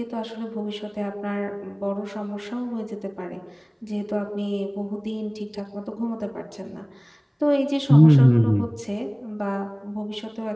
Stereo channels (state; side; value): identical; both; correlation 1.00